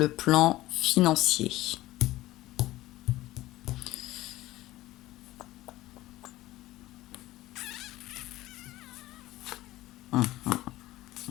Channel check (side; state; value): right; quieter; 16.9 dB